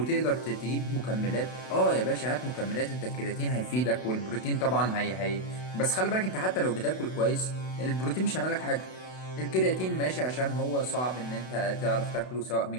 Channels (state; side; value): late; right; 32 ms